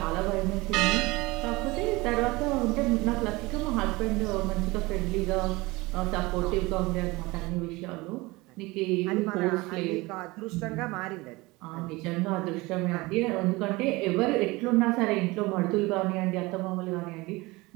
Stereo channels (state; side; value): quieter; left; 22.5 dB